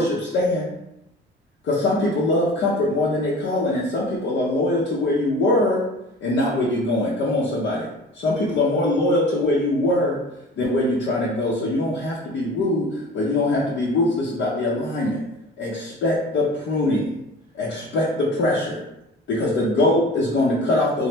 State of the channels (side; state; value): both; normal; correlation 0.40